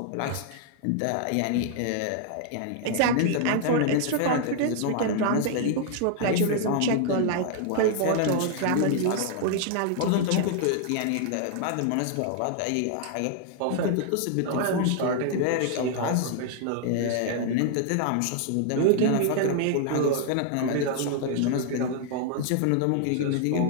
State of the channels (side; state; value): both; different; correlation 0.00